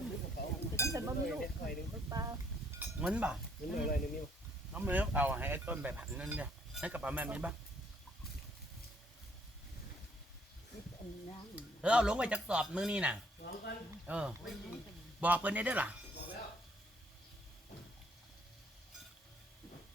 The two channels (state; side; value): normal; both; correlation 0.66